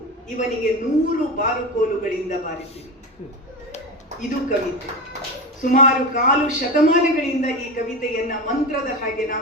ಇವನಿಗೆ 100 ಬಾರುಕೋಲುಗಳಿಂದ ಬಾರಿಸಿರಿ. ಇದು ಕವಿತೆ. ಸುಮಾರು 1/4 ಶತಮಾನಗಳಿಂದ ಈ ಕವಿತೆಯನ್ನ ಮಂತ್ರದ ಹಾಗೆ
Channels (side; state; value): both; normal; correlation 0.22